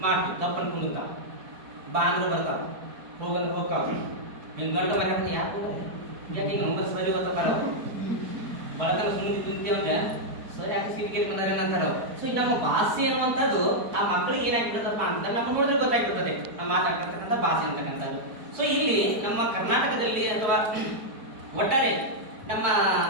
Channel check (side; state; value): left; late; 4.5 ms